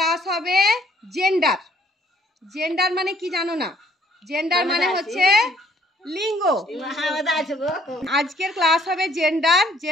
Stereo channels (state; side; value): normal; both; correlation 0.63